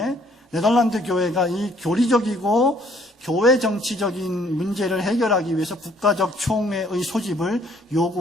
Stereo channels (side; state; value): both; normal; correlation 0.62